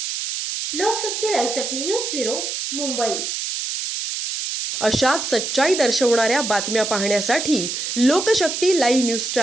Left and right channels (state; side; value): noise; right; hiss, 4 dB below the sound